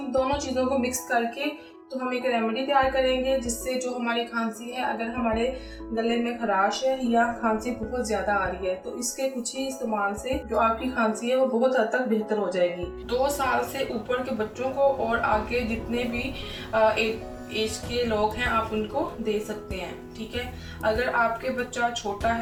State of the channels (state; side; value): identical; both; correlation 1.00